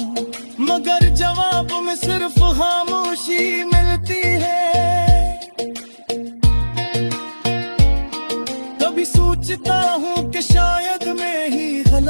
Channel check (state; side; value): inverted; both; correlation -1.00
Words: मगर जवाब में सिर्फ खामोशी मिलती है। कभी सोचता हूँ कि शायद मैं ही